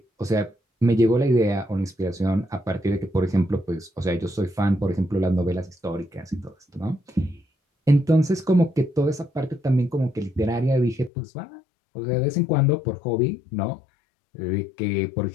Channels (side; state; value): right; drops out; at 11.1 s